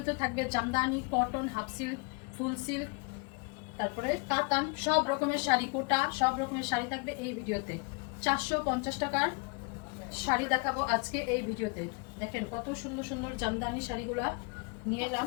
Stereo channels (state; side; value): quieter; right; 32.3 dB